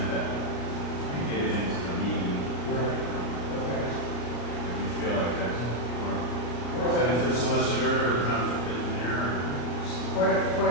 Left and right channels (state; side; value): late; right; 33 ms